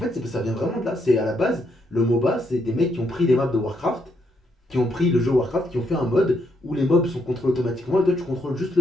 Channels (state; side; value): normal; both; correlation 0.76